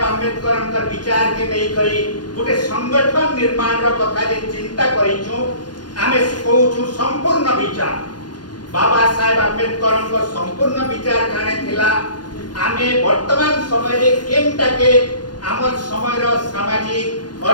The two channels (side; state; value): right; late; 0.70 ms